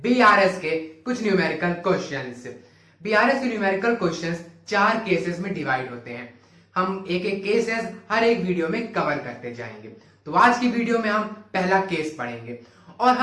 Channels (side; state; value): both; identical; correlation 1.00